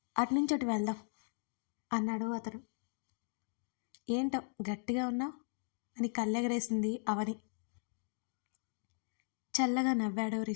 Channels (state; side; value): silent; right; digital silence